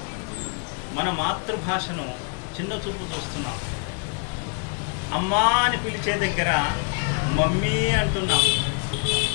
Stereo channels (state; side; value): quieter; right; 38.2 dB